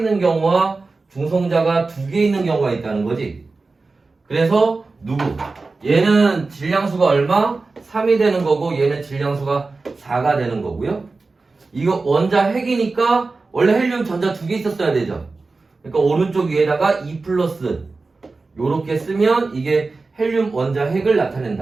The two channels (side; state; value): left; quieter; 3.8 dB